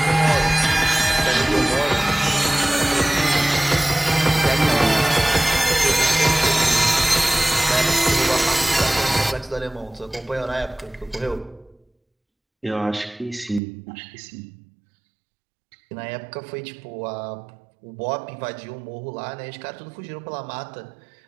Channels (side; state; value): left; drops out; at 13.6 s